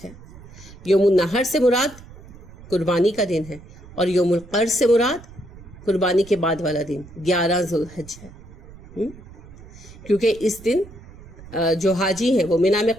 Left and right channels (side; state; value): right; noise; rumble, 19 dB below the sound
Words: ہے۔ یوم النحر سے مراد قربانی کا دن ہے اور یوم القر سے مراد قربانی کے بعد والا دن 11 ذوالحج ہے، کیونکہ اس دن جو حاجی ہیں وہ مینا میں